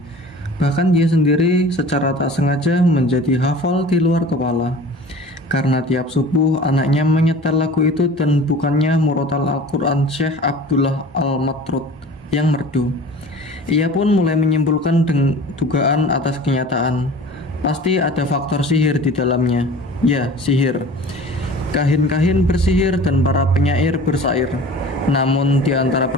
Bahkan dia sendiri secara tak sengaja menjadi hafal di luar kepala. Karena tiap subuh anaknya menyetel lagu itu dan bukannya murotal Al-Quran Syekh Abdullah Al-Matrud yang merdu. Ia pun mulai menyimpulkan dugaan atas kenyataan. Pasti ada faktor sihir di dalamnya. Ya, sihir. Kahin-kahin bersihir dan para penyair bersair. Namun di antara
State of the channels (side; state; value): both; normal; correlation 0.42